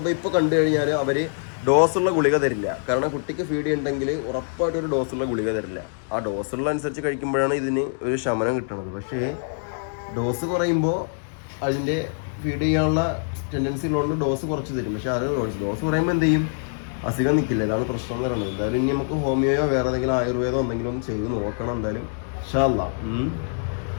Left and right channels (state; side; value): silent; right; digital silence